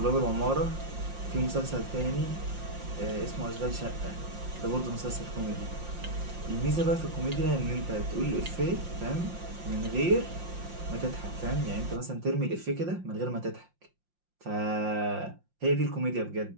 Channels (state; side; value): late; left; 5.7 ms